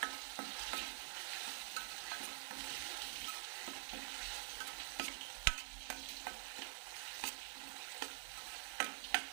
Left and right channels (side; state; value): left; silent; digital silence